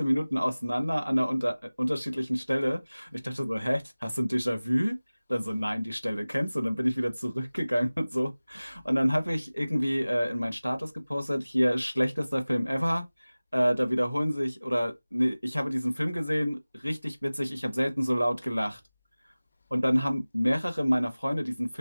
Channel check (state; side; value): inverted; both; correlation -0.99